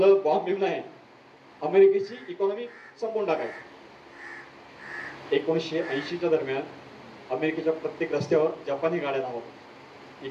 बॉम्ब घेऊन आहे अमेरिकेची इकॉनॉमी संपवून टाकायची. 1980च्या दरम्यान अमेरिकेच्या प्रत्येक रस्त्यावर जपानी गाड्या धावत.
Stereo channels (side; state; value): both; identical; correlation 1.00